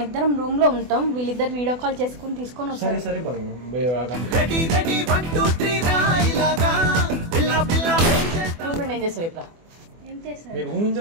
ఇద్దరం రూమ్ లో ఉంటాం, వీళ్ళిద్దరు వీడియో కాల్ చేసుకుని తీసుకొని వస్తారు. ఏం చేస్తావు ఇప్పుడు?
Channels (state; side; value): late; left; 24 ms